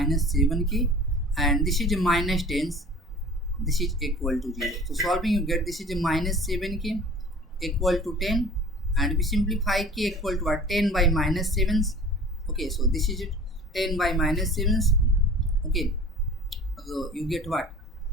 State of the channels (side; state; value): both; normal; correlation 0.44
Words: 7k, and this is a minus 10. This is equal to 0. So solving, you get this is a minus 7k equal to 10, and we simplify k equal to what? 10 by minus 7. Okay, so this is it, 10 by minus 7. Okay, so you get what?